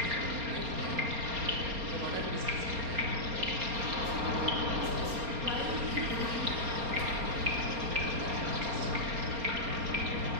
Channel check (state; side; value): late; left; 4.3 ms